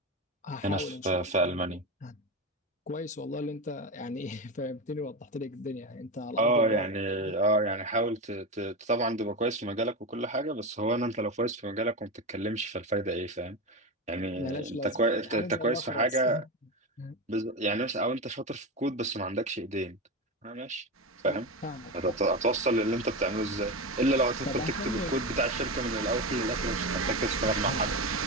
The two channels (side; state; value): both; normal; correlation 0.18